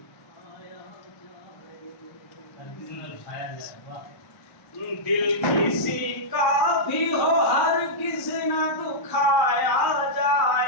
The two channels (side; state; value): right; late; 1.0 ms